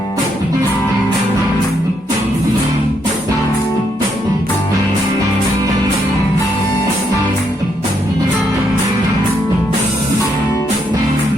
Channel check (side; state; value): both; normal; correlation 0.76